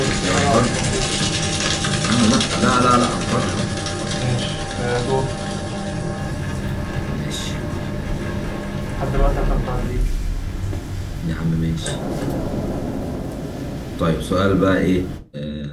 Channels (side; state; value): both; identical; correlation 1.00